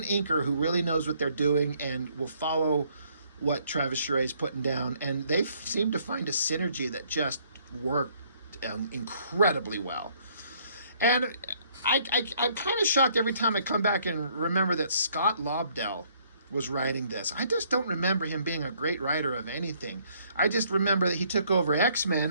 inker who really knows what they're doing and will follow what Travis Charest is putting down. And they seem to find a synergy that just worked incredibly well. And I'm kind of shocked every time I come back and remember that Scott Lobdell was writing this. I just don't remember him being a great writer of anything. I just remember that he took over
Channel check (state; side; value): inverted; both; correlation -0.65